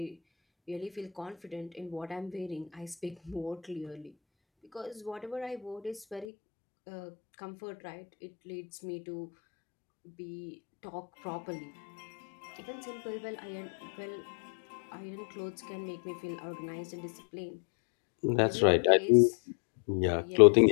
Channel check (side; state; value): right; drops out; at 6.2 s